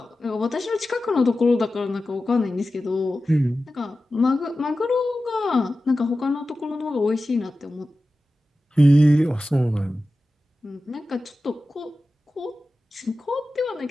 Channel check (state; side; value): normal; both; correlation 0.94